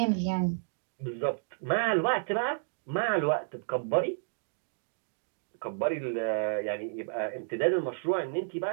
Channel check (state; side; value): silent; left; digital silence